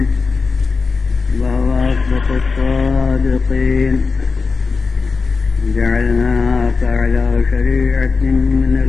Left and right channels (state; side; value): quieter; right; 4.6 dB